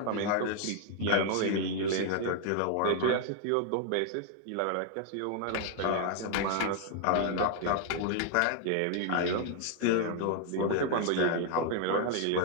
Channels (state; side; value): different; both; correlation 0.00